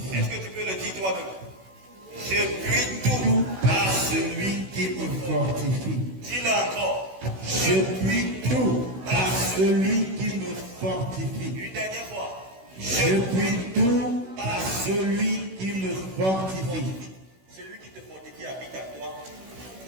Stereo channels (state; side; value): late; left; 16 ms